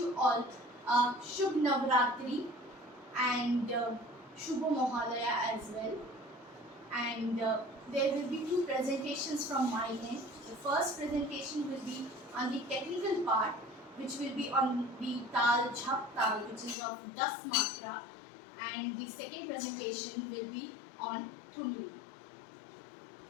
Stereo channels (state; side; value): drops out; right; at 16.8 s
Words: all a Shubh Navratri and Shubha Mohalaya as well. And there will be two presentations from my end. The first presentation will be on the technical part, which will be on the Tal Jhaptal, which is of Das Matra, and the second presentation will be on Thumri.